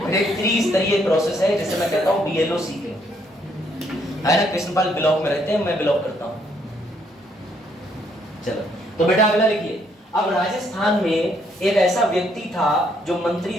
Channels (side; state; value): both; normal; correlation 0.70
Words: एक 30 स्तरीय प्रोसेस है जिसे मैं कहता हूँ BLO सीखे, है ना। कृष्णपाल ब्लॉक में रहते हैं, मैं ब्लॉक करता हूँ। चलो तो बेटा अगला लिखिए। अब राजस्थान में एक ऐसा व्यक्ति था जो मंत्री